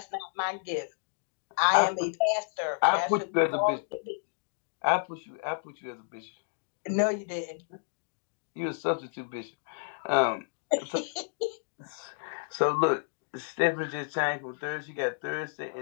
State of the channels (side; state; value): right; silent; digital silence